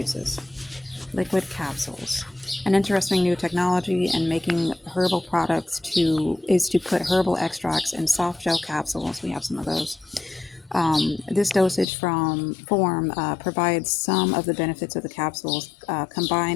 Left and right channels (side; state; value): right; drops out; at 11.9 s